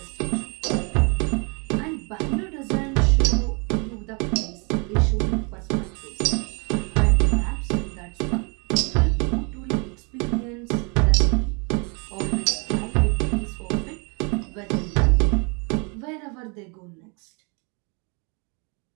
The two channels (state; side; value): quieter; left; 33.7 dB